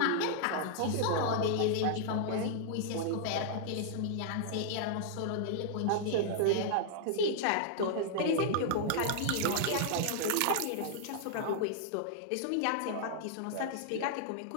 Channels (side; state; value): both; different; correlation -0.01